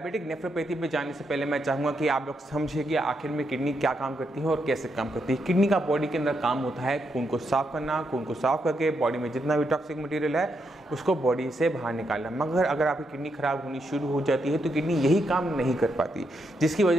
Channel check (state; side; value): normal; both; correlation 0.81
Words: नेफ्रोपैथी पे जाने से पहले मैं चाहूँगा कि आप लोग समझिए कि आखिर में किडनी क्या काम करती है और कैसे काम करती है। किडनी का बॉडी के अंदर काम होता है खून को साफ करना, खून को साफ करके बॉडी में जितना भी टॉक्सिक मटेरियल है उसको बॉडी से बाहर निकालना। मगर अगर आपकी किडनी खराब होनी शुरू हो जाती है तो किडनी यही काम नहीं कर पाती, जिसकी